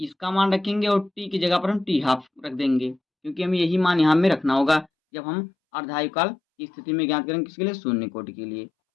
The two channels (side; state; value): right; drops out; at 4.9 s